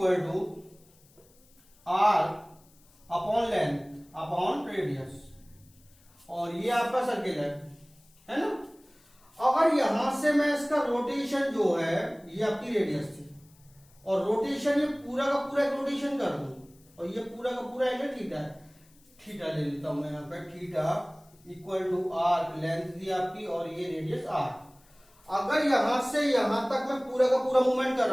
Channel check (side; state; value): left; noise; hiss, 30 dB below the sound